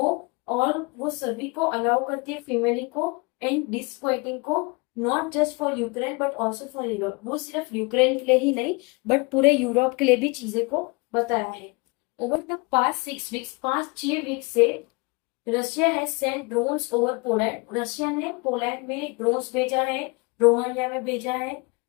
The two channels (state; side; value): quieter; right; 29.0 dB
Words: और वो सभी को अलाउ करती है फीमेल को एंड डिस्क्वाइटिंग को, not just for Ukraine but also for Europe, वो सिर्फ यूक्रेन के लिए ही नहीं बट पूरे यूरोप के लिए भी चीजें को बताया है। Over the past 6 weeks, 5-6 week से Russia has sent drones over Poland, Russia ने पोलैंड में ड्रोन्स भेजा है, रोमानिया में भेजा है,